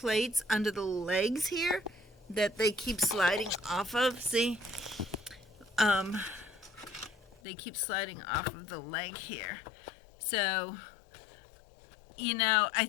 under the legs here that they keep sliding off of. See? They keep sliding off of the leg here. So, you know, I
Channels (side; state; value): right; drops out; at 7.4 s